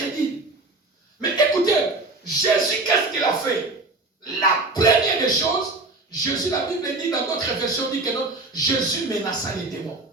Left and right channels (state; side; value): quieter; left; 3.2 dB